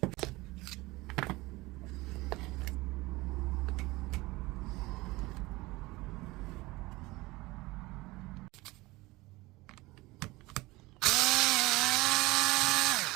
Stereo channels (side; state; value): left; quieter; 21.0 dB